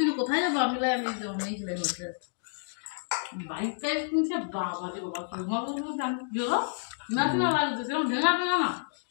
তুমি কোথায় যাবো আমি নেই চলে হচ্ছে বাইক টাইপ কিনছে বাবা রে বাবা তোমার বলবো আমি গেলো না না লাগছে সেরকম ঢেঙা ঢেঙা না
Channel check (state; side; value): silent; right; digital silence